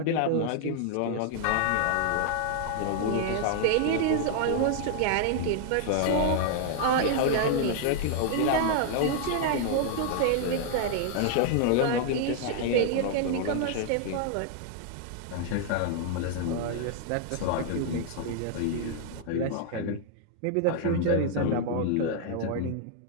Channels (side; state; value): both; different; correlation 0.00